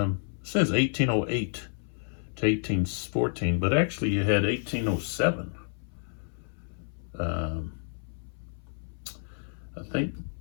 says 1808 to 1814, but actually you had 1807. I think,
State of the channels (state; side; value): silent; right; 58 dB below the other